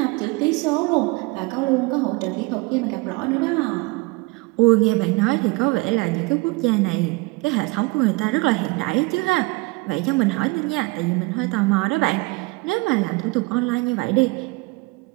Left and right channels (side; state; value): left; quieter; 25.3 dB